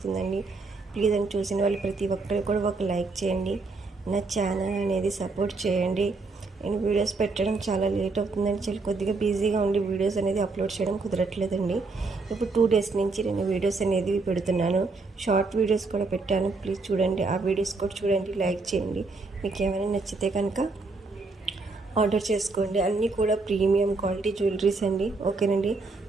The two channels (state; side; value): quieter; left; 3.8 dB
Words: ప్లీజ్ అని చూసిన వాళ్ళు ప్రతి ఒక్కరు కూడా ఒక లైక్ చేయండి. నా ఛానల్ అనేది సపోర్ట్ చేయండి. నేను వీడియోస్ పెట్టడం చాలా లేట్ అవుతుందని చాలా కొద్దిగా బిజీగా ఉండి వీడియోస్ అనేది అప్లోడ్ చేయడం కుదరట్లేదండి. ఇప్పుడు 2 డేస్ నుంచి నేను వీడియోస్ అనేది పెడుతున్నాను. షార్ట్ వీడియోస్ కూడా పెట్టాను, ప్లీజ్ చూడండి. ఆ వీడియోస్ కూడా చూడండి, లైక్ చేయండి. మీకు ఏమైనా నచ్చితే కనుక ఆర్డర్ చేసుకోండి. అన్నీ కూడా ప్రీమియం క్వాలిటీ జ్యువెలరీస్ అండి, ఓకేనండి.